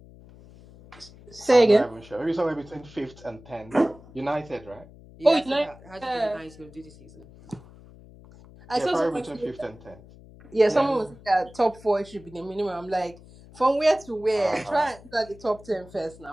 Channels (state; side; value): noise; left; hum, 21 dB below the sound